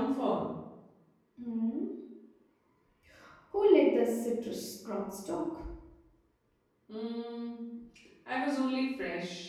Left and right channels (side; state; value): both; identical; correlation 1.00